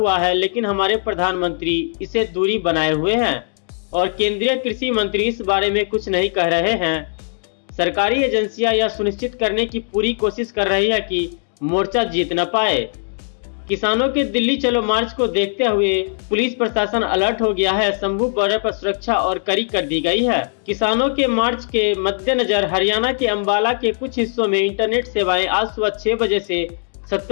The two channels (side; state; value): right; silent; digital silence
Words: है, लेकिन हमारे प्रधानमंत्री इसे दूरी बनाए हुए हैं और केंद्रीय कृषि मंत्री इस बारे में कुछ नहीं कह रहे हैं। सरकारी एजेंसियां यह सुनिश्चित करने की पूरी कोशिश कर रही है कि मोर्चा जीत न पाए। किसानों के दिल्ली चलो मार्च को देखते हुए पुलिस प्रशासन अलर्ट हो गया है। शंभू बॉर्डर पर सुरक्षा और कड़ी कर दी गई है। किसानों के मार्च के मद्देनजर हरियाणा के अंबाला के कुछ हिस्सों में इंटरनेट सेवाएं आज सुबह 6 बजे से